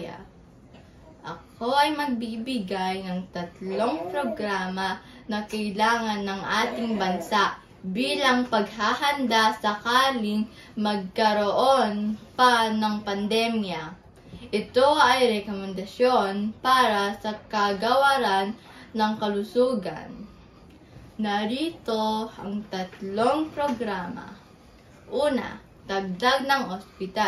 Ako ay magbibigay ng 3 programa na kailangan ng ating bansa bilang paghahanda sakaling magkaroon pa ng pandemya. Ito ay rekomendasyon para sa kagawaran ng kalusugan. Narito ang 3 programa. Una, dagdag ng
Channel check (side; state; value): both; identical; correlation 1.00